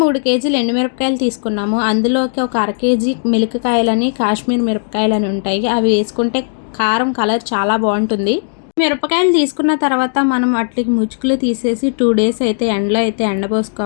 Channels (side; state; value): right; silent; digital silence